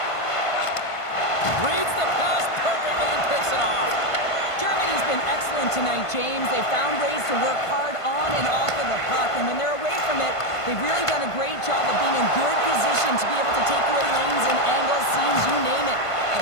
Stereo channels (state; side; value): late; right; 1.5 ms